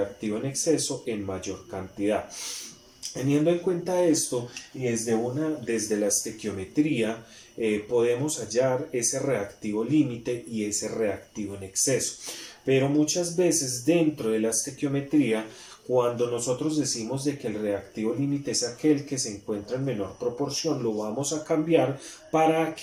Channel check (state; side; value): identical; both; correlation 1.00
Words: en exceso en mayor cantidad. Teniendo en cuenta esto y desde la estequiometría podemos hallar ese reactivo límite y ese reactivo en exceso. Pero muchas veces dentro de la estequiometría, cuando nosotros decimos de que el reactivo límite es aquel que se encuentra en menor proporción, lo vamos a cambiar para